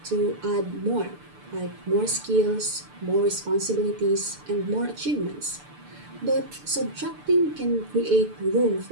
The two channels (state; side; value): late; left; 6.8 ms